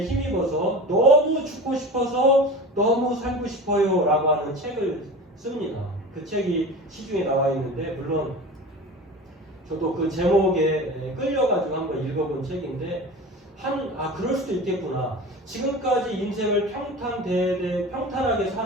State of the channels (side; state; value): both; normal; correlation 0.33